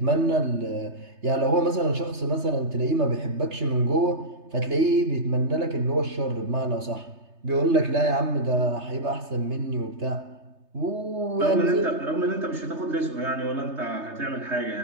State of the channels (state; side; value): late; left; 3.3 ms